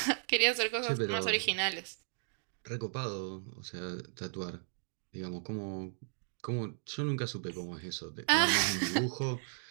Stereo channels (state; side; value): silent; left; digital silence